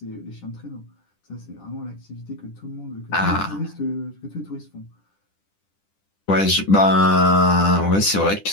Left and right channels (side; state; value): right; late; 10 ms